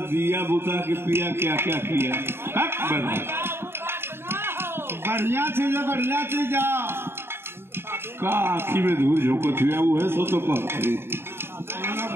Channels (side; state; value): left; late; 0.11 ms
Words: बुता के पिया क्या क्या किया। बढ़िया चीज है, बढ़िया चीज का आखी में धूल झोंकत हुआ वो है सो तो कहते।